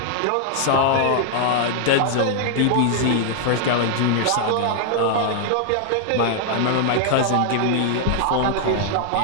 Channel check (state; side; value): different; both; correlation 0.00